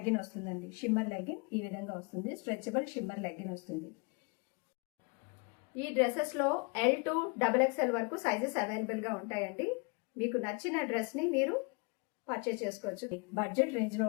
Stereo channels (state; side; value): quieter; right; 31.3 dB